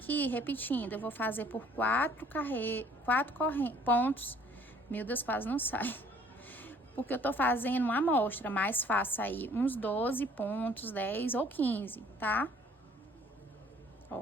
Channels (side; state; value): both; normal; correlation 0.57